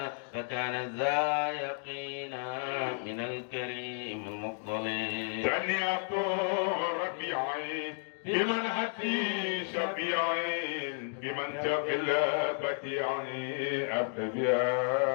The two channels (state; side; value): silent; right; 56 dB below the other